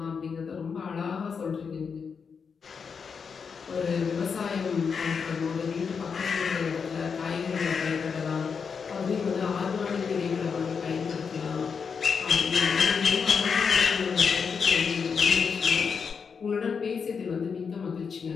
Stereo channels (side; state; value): right; quieter; 6.0 dB